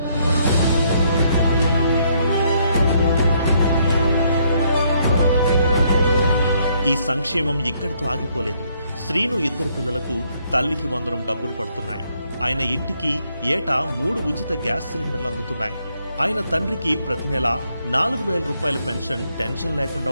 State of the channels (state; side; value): inverted; both; correlation -0.71